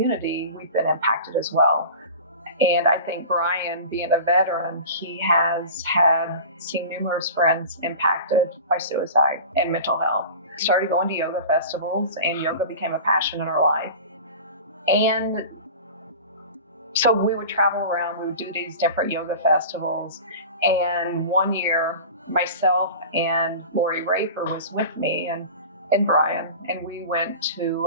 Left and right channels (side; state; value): both; inverted; correlation -0.35